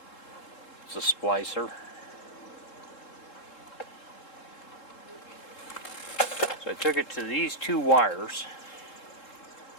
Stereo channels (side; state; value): right; late; 3.7 ms